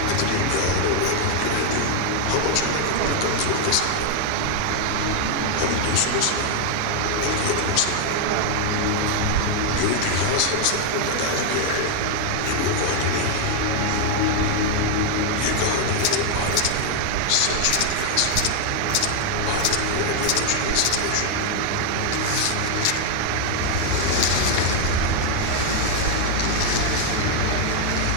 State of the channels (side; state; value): both; different; correlation 0.00